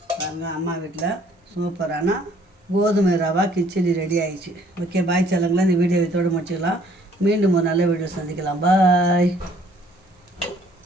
பாருங்க, அம்மா வீட்டில் சூப்பரான கோதுமை ரவா கிச்சடி ரெடி ஆயிடுச்சு. ஓகே, பாய் செல்லுங்களா. இந்த வீடியோ இதோடு முடிச்சுக்கலாம். மீண்டும் ஒரு நல்ல வீடியோ சந்திக்கலாம். பாய்.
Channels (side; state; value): both; normal; correlation 0.60